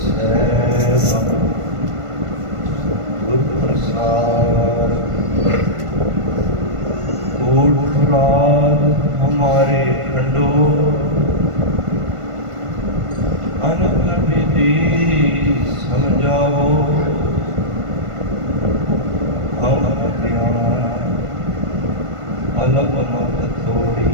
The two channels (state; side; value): late; left; 1.5 ms